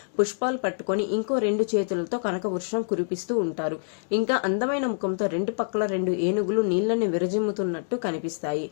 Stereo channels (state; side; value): silent; right; digital silence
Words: పుష్పాలు పట్టుకొని ఇంకో 2 చేతులతో కనక వర్షం కురిపిస్తూ ఉంటారు. ఇంకా అందమైన ముఖంతో 2 పక్కల 2 ఏనుగులు నీళ్లని విరజిమ్ముతున్నట్టు కనిపిస్తాయి.